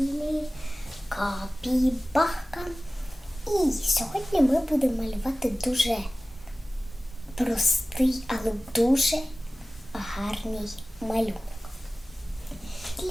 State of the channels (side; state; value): both; normal; correlation 0.97